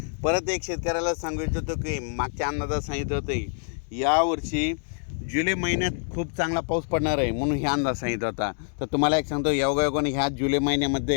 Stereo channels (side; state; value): right; silent; digital silence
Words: परत एक शेतकऱ्याला सांगू इच्छितो की मागच्या अंदाजात सांगितलं होतं यावर्षी जुलै महिन्यात खूप चांगला पाऊस पडणार आहे, म्हणून हे अंदाज सांगितला होता। तर तुम्हाला एक सांगतो योगायोगाने ह्या जुलै